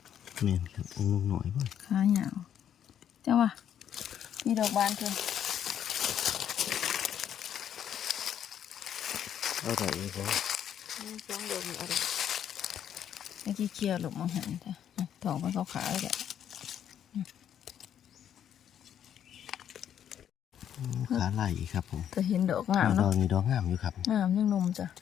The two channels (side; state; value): right; quieter; 9.6 dB